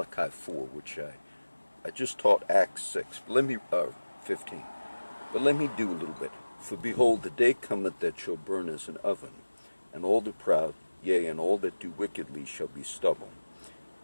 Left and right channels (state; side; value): inverted; both; correlation -1.00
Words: 4, which I just taught Acts 6. But let me 15. But let me do a little bit. For behold, the day cometh that shall burn as an oven, and all the proud, yea, and all that do wickedly shall be stubble.